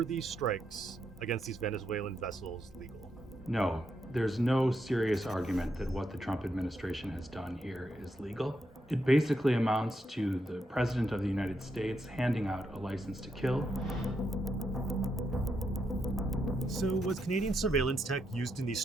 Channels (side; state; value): both; normal; correlation 0.81